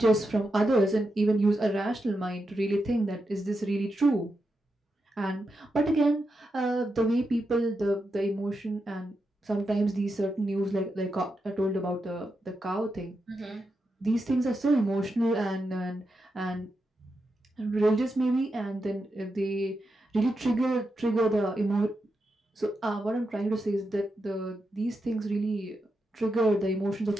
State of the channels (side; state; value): both; normal; correlation 0.86